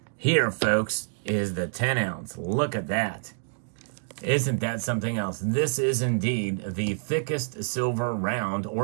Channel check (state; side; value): silent; left; 60 dB below the other